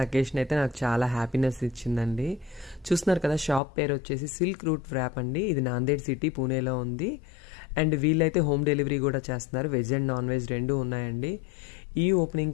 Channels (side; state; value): right; drops out; at 3.6 s